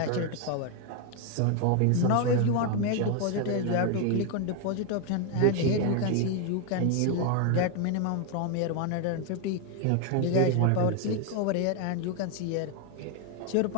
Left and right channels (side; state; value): both; different; correlation 0.01